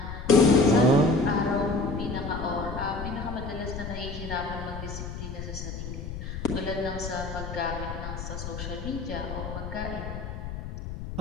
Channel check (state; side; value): noise; left; rumble, 8 dB below the sound